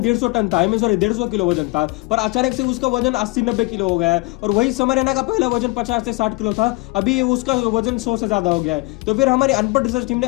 150 टन था, 150 किलो वजन था, पर अचानक से उसका वजन 80-90 किलो हो गया है। और वही समर एना का पहला वजन 50 से 60 किलो था, अभी उसका वजन 100 से ज्यादा हो गया है। तो फिर हमारी अनपढ़ रिसर्च टीम ने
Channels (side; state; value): right; quieter; 25.4 dB